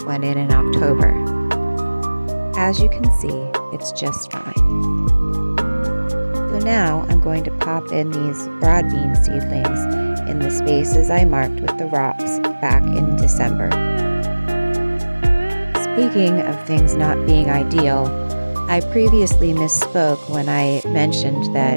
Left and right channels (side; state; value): both; inverted; correlation -1.00